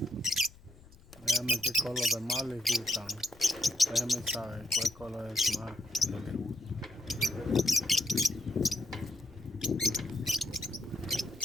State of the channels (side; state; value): left; noise; rumble, 23 dB below the sound